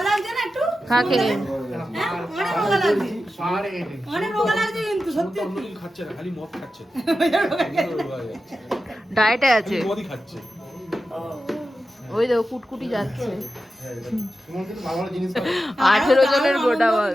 ডায়েটে আছে, ওই দেখো কুটকুটি যাচ্ছে। 18 জনের গোটা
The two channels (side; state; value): both; normal; correlation 0.91